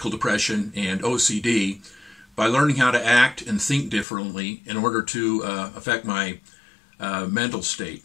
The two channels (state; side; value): drops out; right; at 4.0 s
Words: depression, and OCD by learning how to act and think differently in order to affect my mental state.